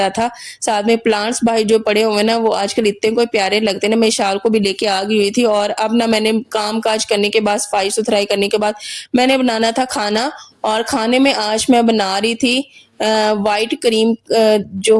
था। साथ में प्लांट्स बाहर जो पड़े हुए हैं ना, वो आजकल इतने कोई प्यारे लगते हैं ना, मैं इशार को भी लेके आ गई हुई थी और अब ना मैंने काम-काज करने के बाद, सफाई-सुथराई करने के बाद मैंने बनाना था खाना और खाने में आज मैं बना रही थी व्हाइट क्रीम, जो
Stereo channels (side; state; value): both; identical; correlation 1.00